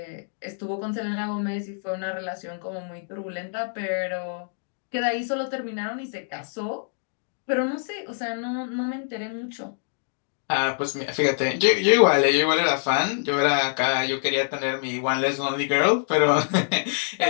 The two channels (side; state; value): right; silent; digital silence